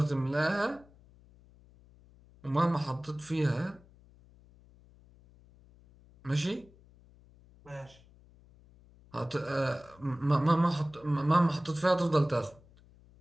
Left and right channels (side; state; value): left; noise; hum, 26 dB below the sound